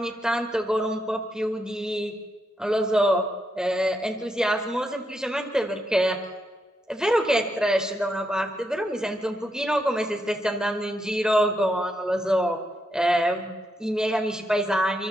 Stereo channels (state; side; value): normal; both; correlation 0.81